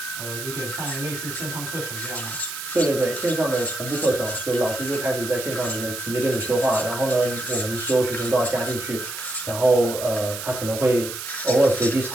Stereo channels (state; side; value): noise; right; hiss, 8 dB below the sound